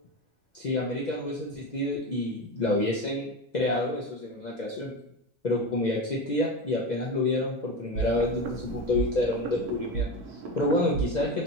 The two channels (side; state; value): both; normal; correlation 0.22